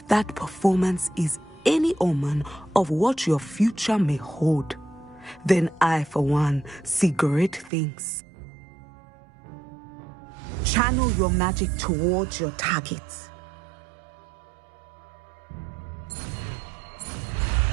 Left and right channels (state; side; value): drops out; left; at 7.7 s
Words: that performance is any omen of what your future may hold, then I, for one, see great things. Channel your magic towards your target.